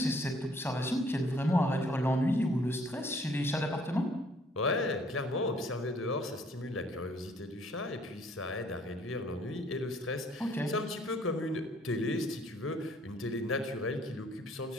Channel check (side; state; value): both; normal; correlation 0.61